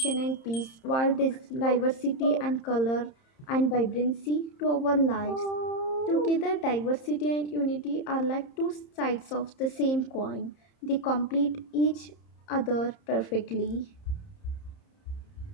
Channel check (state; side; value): late; right; 30 ms